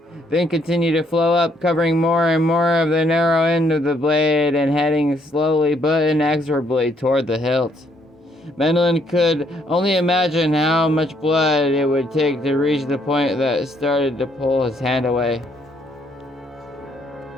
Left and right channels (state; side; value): normal; both; correlation 0.69